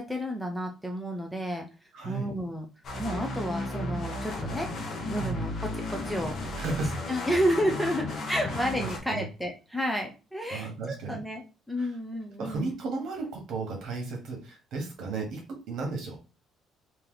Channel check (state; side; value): normal; both; correlation 0.76